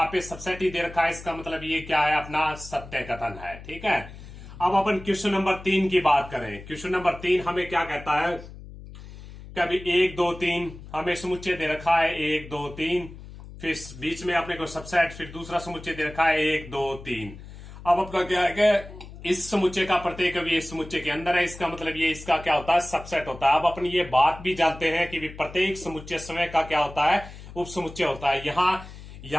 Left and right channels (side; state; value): left; noise; hum, 15 dB below the sound